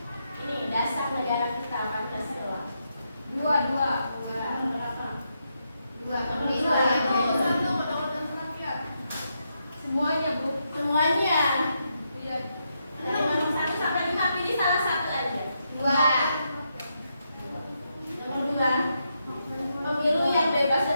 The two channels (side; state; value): both; inverted; correlation -0.82